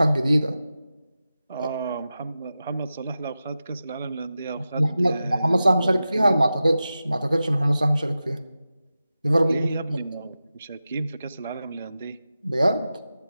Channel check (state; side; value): inverted; both; correlation -0.93